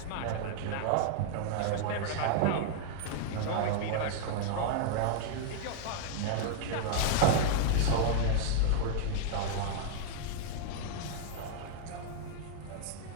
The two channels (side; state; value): both; different; correlation -0.01